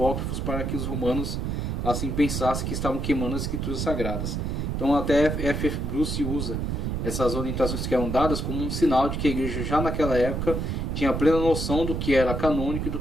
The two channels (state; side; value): noise; right; rumble, 2 dB below the sound